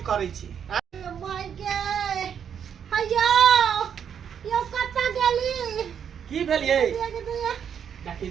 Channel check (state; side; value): quieter; left; 8.0 dB